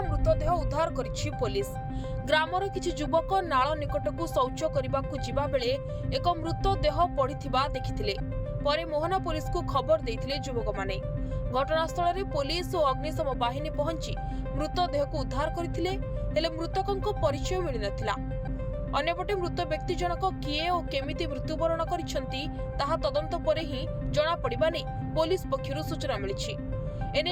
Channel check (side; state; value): both; identical; correlation 1.00